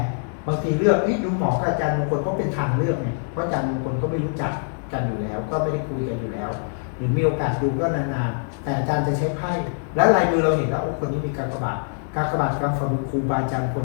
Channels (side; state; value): right; silent; digital silence